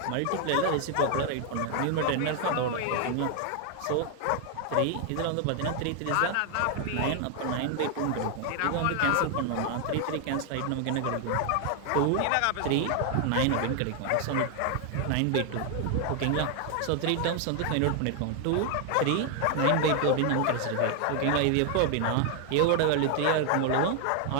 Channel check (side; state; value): both; different; correlation 0.00